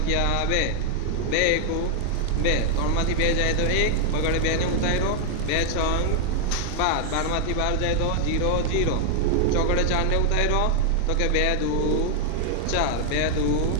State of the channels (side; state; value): both; different; correlation 0.00